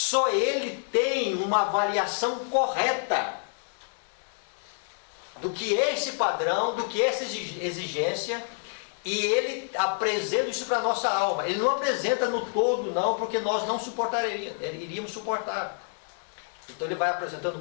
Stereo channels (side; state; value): right; silent; 59 dB below the other